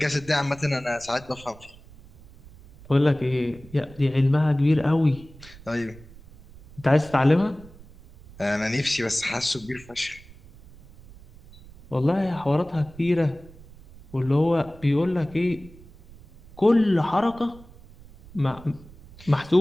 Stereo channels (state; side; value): noise; right; rumble, 21 dB below the sound